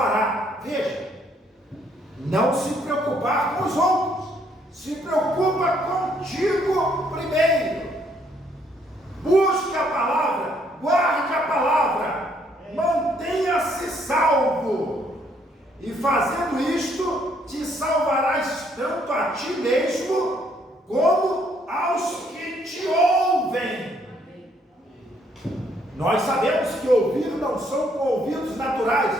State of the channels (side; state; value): both; normal; correlation 0.68